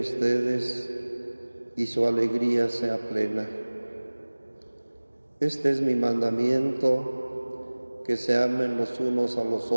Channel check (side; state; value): both; inverted; correlation -1.00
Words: y su alegría sea plena. Este es mi mandamiento, que se amen los unos a los